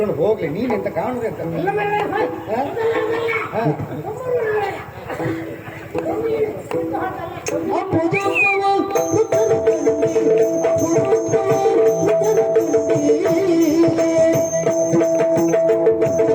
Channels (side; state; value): both; identical; correlation 1.00